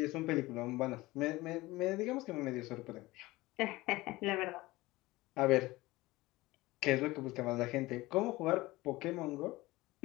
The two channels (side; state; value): right; quieter; 19.7 dB